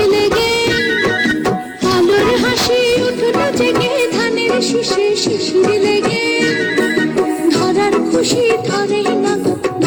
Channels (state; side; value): identical; both; correlation 1.00